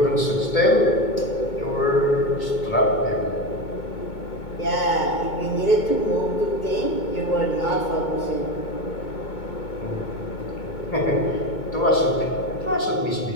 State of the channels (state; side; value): late; right; 2.2 ms